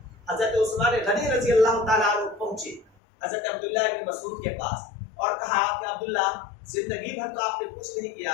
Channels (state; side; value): drops out; right; at 2.9 s